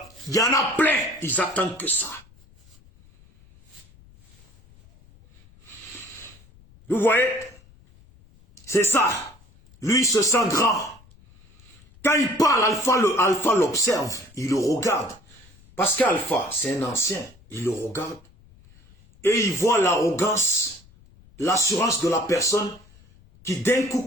y en a plein, ils attendent que ça. Vous voyez? C'est ça. Lui, il se sent grand. Quand il parle, Alpha l'observe, il le regarde. Parce qu'Alpha, c'est un ancien, il le regarde. Et il voit l'arrogance, l'assurance de la personne qui d'un coup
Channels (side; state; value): left; noise; rumble, 27 dB below the sound